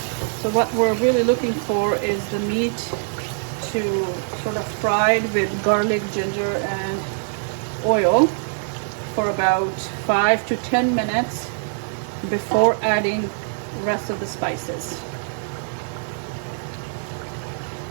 So what we're really looking for is the meat to sort of fried with garlic, ginger, and oil for about 5 to 10 minutes before adding the rest of the spices.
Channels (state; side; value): silent; left; digital silence